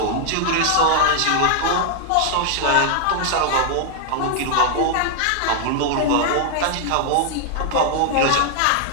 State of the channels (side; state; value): both; different; correlation 0.00